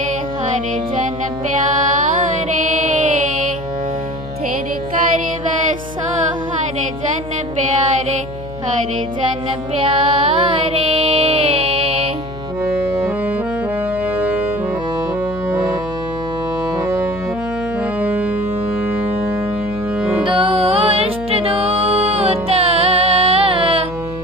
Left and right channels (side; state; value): left; noise; hum, 13 dB below the sound